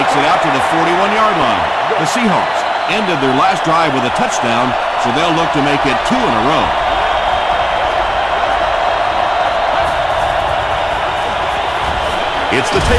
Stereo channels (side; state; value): both; identical; correlation 1.00